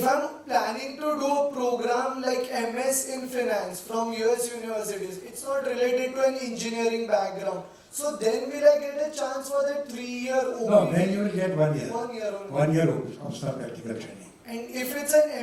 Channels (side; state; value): both; identical; correlation 1.00